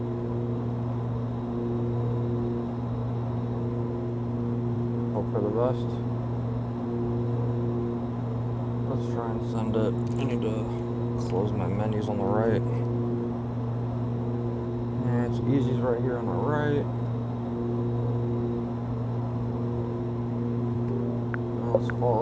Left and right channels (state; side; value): identical; both; correlation 1.00